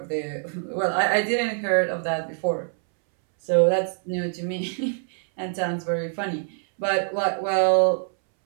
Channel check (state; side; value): silent; left; 62 dB below the other